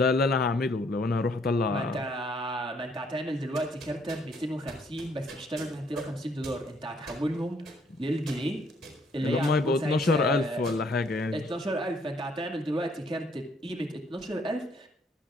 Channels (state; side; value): normal; both; correlation 0.66